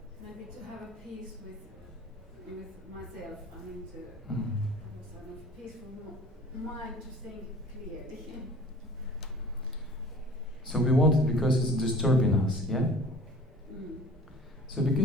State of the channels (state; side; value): normal; both; correlation 0.46